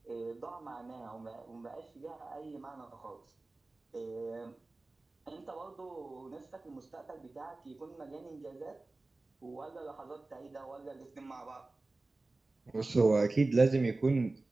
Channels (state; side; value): quieter; left; 3.2 dB